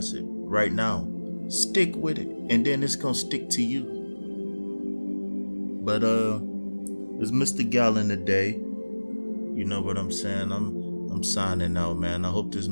it right now, stick with it, and then it's gonna stick to you. But it's Mr. Gallon today. You know what I'm saying? I'm signing out, man. I hope this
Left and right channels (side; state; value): both; inverted; correlation -1.00